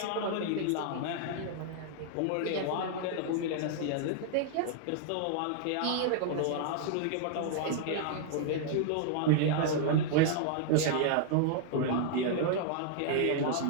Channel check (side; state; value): both; different; correlation 0.00